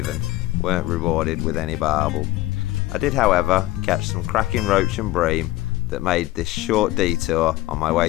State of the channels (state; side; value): quieter; right; 17.0 dB